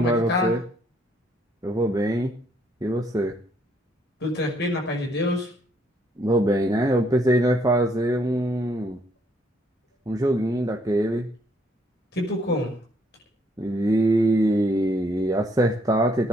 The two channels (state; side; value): normal; both; correlation 0.68